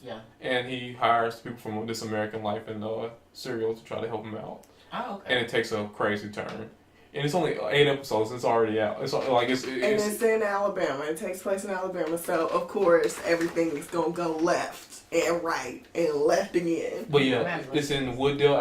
Yeah. And he hires people from This American Life and Serial to try to help him out. Oh, okay. And it takes a crazy turn. And it's only 8 episodes. It's already out. It's in Alabama. It takes place in Alabama, so of course everything is gonna go left and right and left again. But yeah, it's in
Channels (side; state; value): both; identical; correlation 1.00